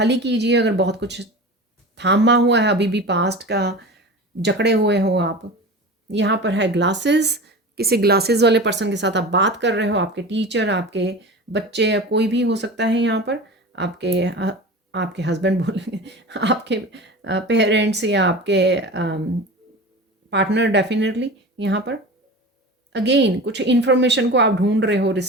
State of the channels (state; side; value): normal; both; correlation 0.32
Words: कीजिए, अगर बहुत कुछ थामा हुआ है अभी भी, पास्ट का जकड़े हुए हो आप। यहाँ पर है ग्लासेस, किसी ग्लासेस वाले पर्सन के साथ आप बात कर रहे हो, आपके टीचर, आपके बच्चे, या कोई भी हो सकता है यहाँ पर, आपके हस्बैंड बोलेंगे, आपके पेरेंट्स, या आपके पार्टनर, डेफिनेटली। यहाँ पर अगेन कुछ इन्फॉर्मेशन को आप ढूंढ रहे हो,